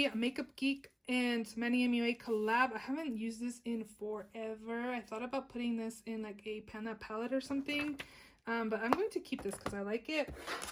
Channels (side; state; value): both; identical; correlation 1.00